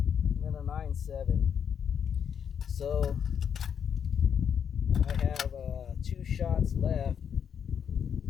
then a 9-7. So I have 2 shots left.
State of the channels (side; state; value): right; quieter; 7.8 dB